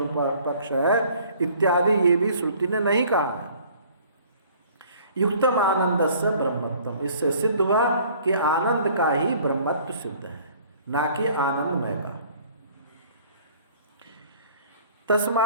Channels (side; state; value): both; inverted; correlation -0.54